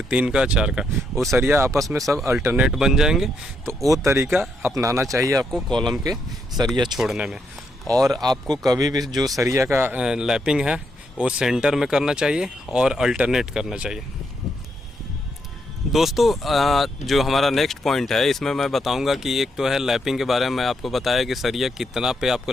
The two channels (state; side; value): normal; both; correlation 0.78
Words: 3 का, 4 का, वो सरिया आपस में सब अल्टरनेट बन जाएंगे। तो वो तरीका अपनाना चाहिए आपको कॉलम के सरिया छोड़ने में। और आपको कभी भी जो सरिया का लैपिंग है वो सेंटर में करना चाहिए और अल्टरनेट करना चाहिए। दोस्तों जो हमारा नेक्स्ट पॉइंट है इसमें मैं बताऊंगा कि एक तो है लैपिंग के बारे में मैं आपको बताया कि सरिया कितना पे